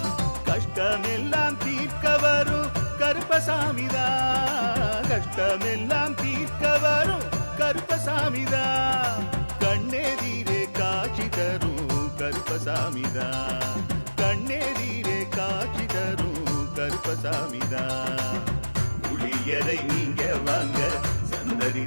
கஷ்டமெல்லாம் தீர்க்க வரும் கருப்பசாமிதான், கஷ்டமெல்லாம் தீர்க்க வரும் கருப்பசாமிதான். கண்ணெதிரே காட்சி தரும் கருப்பசாமிதான், கண்ணெதிரே காட்சி தரும் கருப்பசாமிதான். புளியரை நீங்க வாங்க சந்ததி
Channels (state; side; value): inverted; both; correlation -1.00